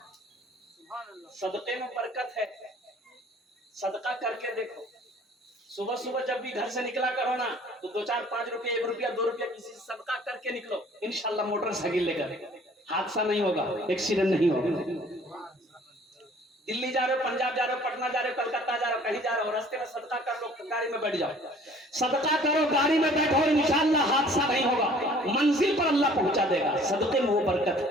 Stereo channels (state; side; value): normal; both; correlation 0.53